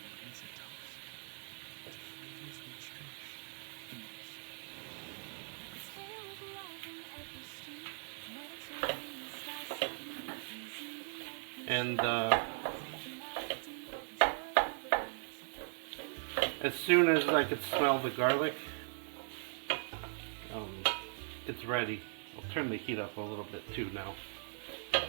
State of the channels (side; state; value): left; silent; digital silence